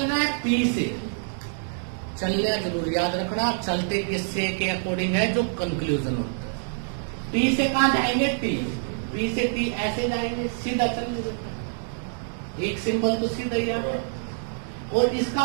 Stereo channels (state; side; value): silent; left; 61 dB below the other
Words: है? पी से चलना जरूर याद रखना। चलते किससे के अकॉर्डिंग है? जो कंक्लूजन होता है। पी से कहां जाएंगे? टी। पी से टी ऐसे जाएंगे, सीधा चलने। एक सिंबल तो सीधा ही आ गया। और